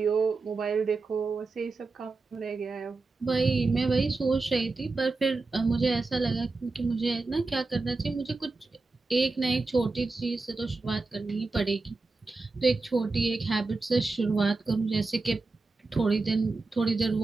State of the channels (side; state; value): left; quieter; 3.7 dB